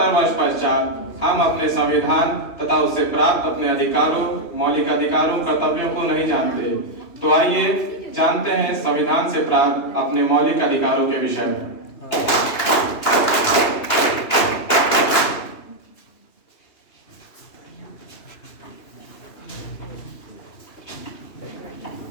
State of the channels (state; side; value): late; right; 2.8 ms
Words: वर्ष पश्चात हम अपने संविधान तथा उससे प्राप्त अपने अधिकारों, मौलिक अधिकारों, कर्तव्यों को नहीं जानते। तो आइए जानते हैं संविधान से प्राप्त अपने मौलिक अधिकारों के विषय में।